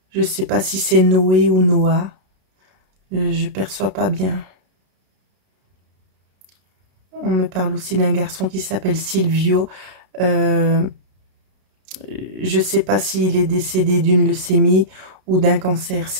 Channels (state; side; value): late; left; 32 ms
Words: Je sais pas si c'est Noé ou Noah. Je perçois pas bien. On me parle aussi d'un garçon qui s'appelle Silvio. Je sais pas s'il est décédé d'une leucémie ou d'un cancer.